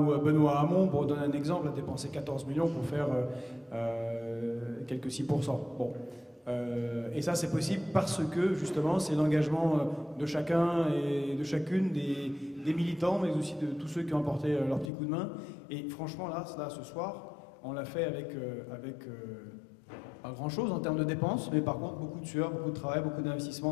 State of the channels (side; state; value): right; drops out; at 14.9 s